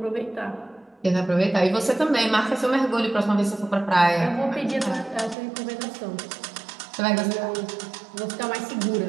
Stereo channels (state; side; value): drops out; left; at 5.4 s